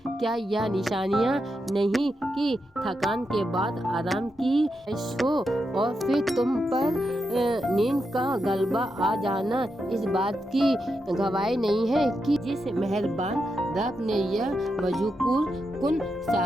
यह निशानियाँ नहीं कि थकान के बाद आराम की हो और फिर तुम पर नींद का गलबा आ जाना इस बात की गवाही नहीं है कि जिस मेहरबान रब ने यह मजकूर कुन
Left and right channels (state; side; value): normal; both; correlation 0.85